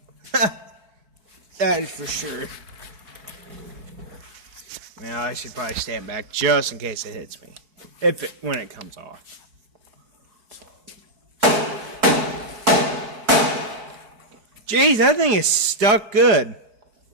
That is for sure. Now I should probably stand back just in case it hits me. When it comes off. Jeez, that thing is stuck good.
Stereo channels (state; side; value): late; left; 4.7 ms